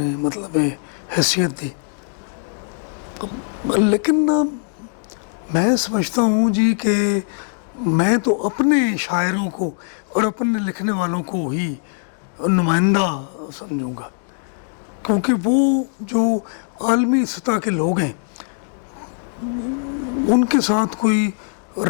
مطلب حیثیت دی. لیکن میں سمجھتا ہوں جی کہ میں تو اپنے شاعروں کو اور اپنے لکھنے والوں کو ہی نمائندہ سمجھوں گا، کیونکہ وہ جو عالمی سطح کے لوگ ہیں ان کے ساتھ کوئی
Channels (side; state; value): right; silent; 59 dB below the other